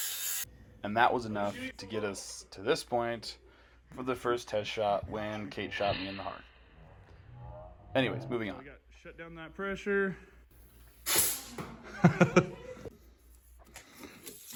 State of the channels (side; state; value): both; identical; correlation 1.00